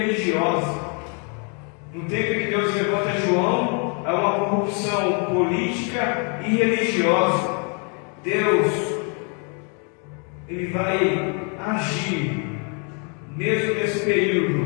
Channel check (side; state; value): right; quieter; 37.8 dB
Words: No tempo em que Deus levanta João, há uma corrupção política e religiosa. Deus, Ele vai agir, mesmo nesse